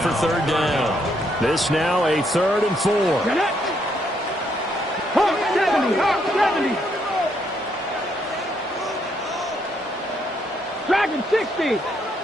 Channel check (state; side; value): normal; both; correlation 0.74